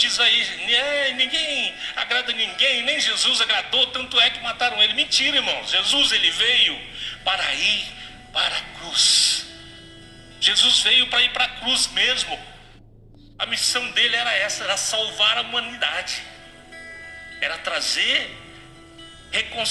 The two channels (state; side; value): identical; both; correlation 1.00